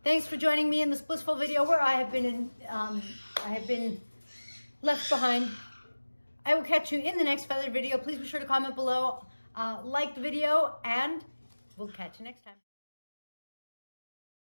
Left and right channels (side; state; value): both; inverted; correlation -1.00